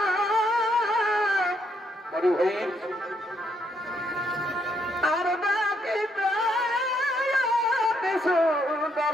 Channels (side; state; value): both; normal; correlation 0.74